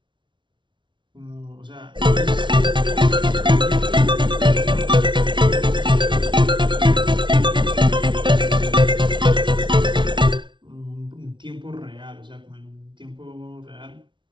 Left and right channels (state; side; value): late; left; 0.24 ms